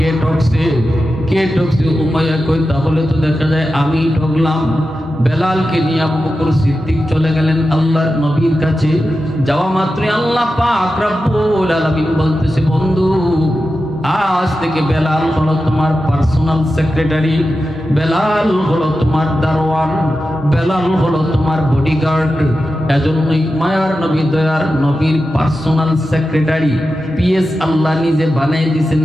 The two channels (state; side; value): normal; both; correlation 0.91